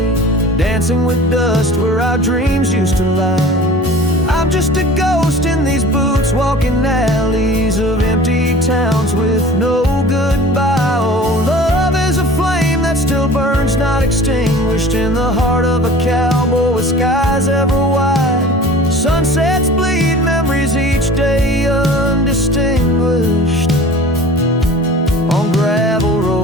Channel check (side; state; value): both; normal; correlation 0.43